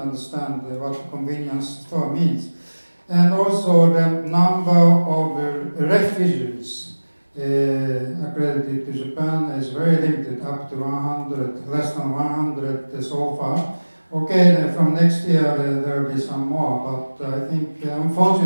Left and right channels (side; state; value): both; inverted; correlation -1.00